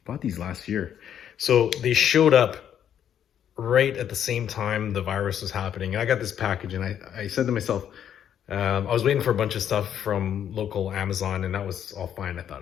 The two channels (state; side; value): quieter; right; 9.5 dB